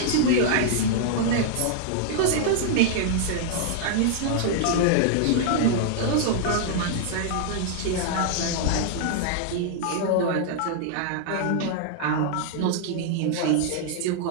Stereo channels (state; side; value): different; both; correlation -0.01